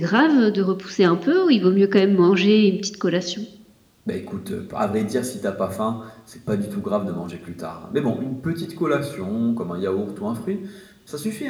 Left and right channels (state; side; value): identical; both; correlation 1.00